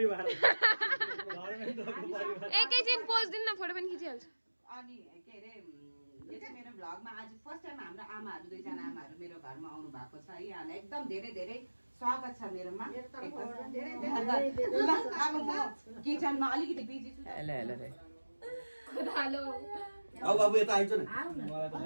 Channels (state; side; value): inverted; both; correlation -1.00